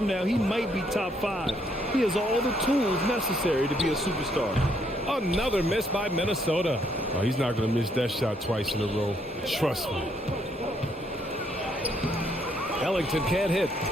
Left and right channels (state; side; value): normal; both; correlation 0.71